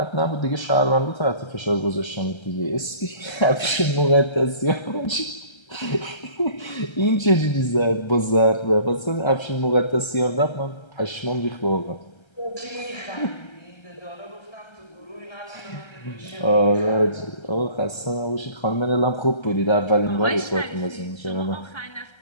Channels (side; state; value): right; late; 1.3 ms